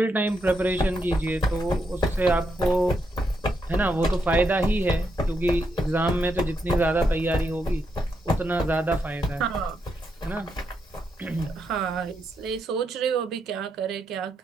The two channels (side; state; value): both; normal; correlation 0.81